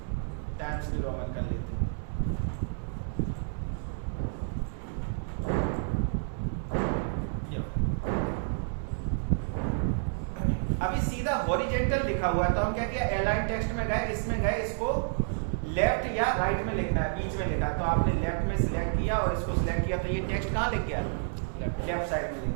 टाइम्स न्यू रोमन कर लेते हैं। अभी सीधा हॉरिजेंटल लिखा हुआ है, तो हम क्या किया, अलाइन टेक्स्ट में गए, इसमें गए, इसको लेफ्ट या राइट में लिखना है, बीच में लिखा है, तो आपने लेफ्ट में सिलेक्ट किया और इसको सिलेक्ट किया, तो ये टेक्स्ट कहाँ लिख गया, लेफ्ट साइड में लिख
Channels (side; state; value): left; silent; digital silence